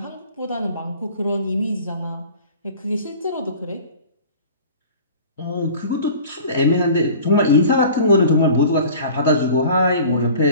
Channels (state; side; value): inverted; both; correlation -0.43